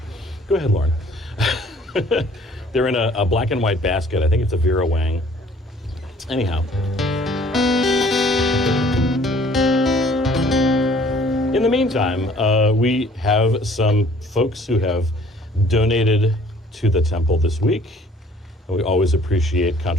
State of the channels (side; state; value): both; normal; correlation 0.56